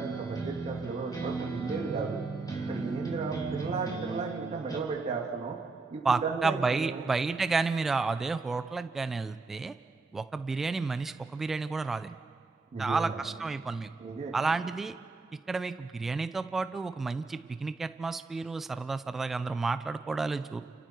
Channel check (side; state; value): left; quieter; 3.8 dB